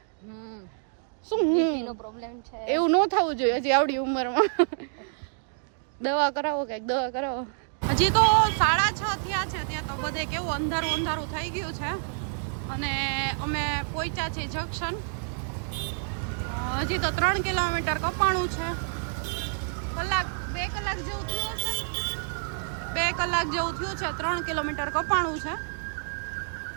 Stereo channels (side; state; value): left; silent; digital silence